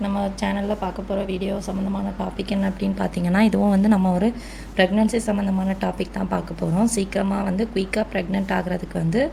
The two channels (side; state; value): both; identical; correlation 1.00